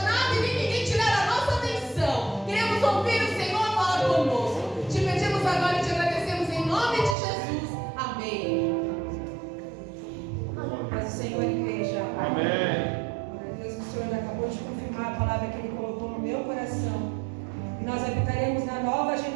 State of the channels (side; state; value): left; drops out; at 7.2 s